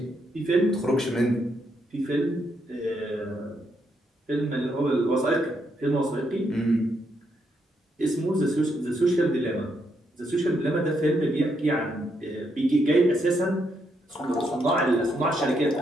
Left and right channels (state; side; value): normal; both; correlation 0.78